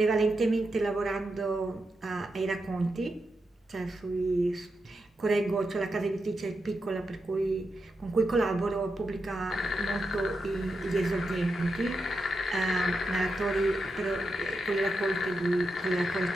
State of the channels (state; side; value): normal; both; correlation 0.87